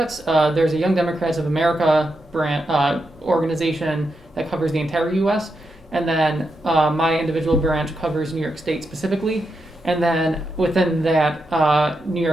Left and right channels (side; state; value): both; normal; correlation 0.85